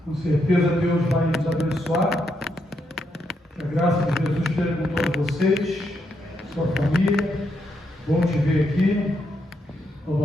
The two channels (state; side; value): normal; both; correlation 0.79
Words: Com certeza Deus vai nos abençoar. Que a graça de Jesus esteja com todos vocês, sua família. Bom te ver aqui.